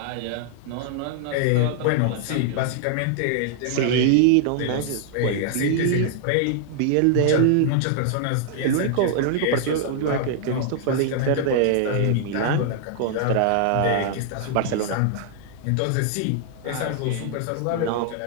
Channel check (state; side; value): different; both; correlation 0.00